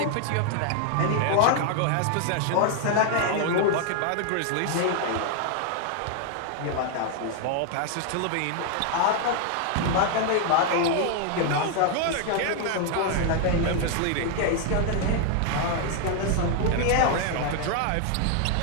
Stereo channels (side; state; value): both; different; correlation 0.00